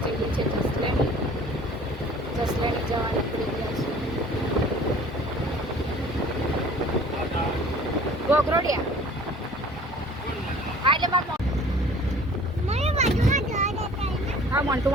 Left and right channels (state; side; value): normal; both; correlation 0.49